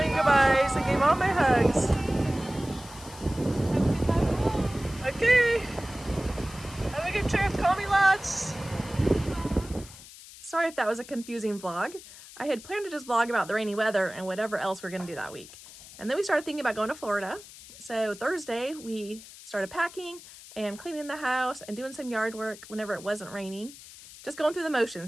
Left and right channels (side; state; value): left; noise; hiss, 17 dB below the sound